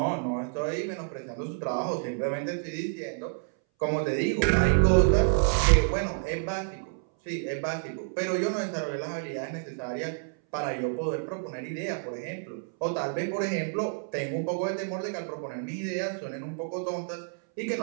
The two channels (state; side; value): silent; left; 59 dB below the other